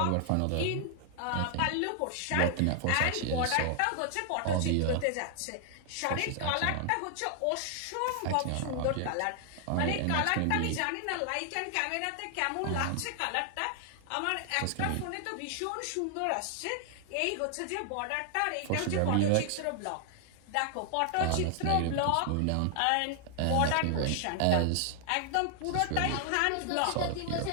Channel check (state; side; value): different; both; correlation 0.00